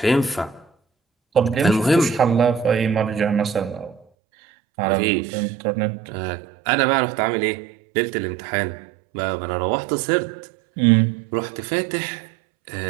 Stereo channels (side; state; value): left; drops out; at 4.0 s